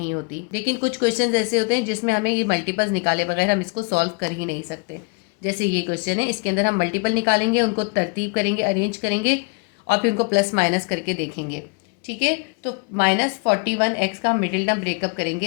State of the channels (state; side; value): quieter; right; 30.4 dB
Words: होती। लेकिन कुछ क्वेश्चंस ऐसे होते हैं जिसमें हमें ये मल्टीपल्स निकाले बगैर हम इसको सॉल्व कर ही नहीं सकते। जैसे ये क्वेश्चन है, इसके अंदर हम मल्टीपल निकालेंगे, उनको तरतीब करेंगे, अरेंज करेंगे और फिर उनको प्लस माइनस करके देखेंगे। ठीक है, तो -41x का हम मिडिल टर्म ब्रेकअप करेंगे।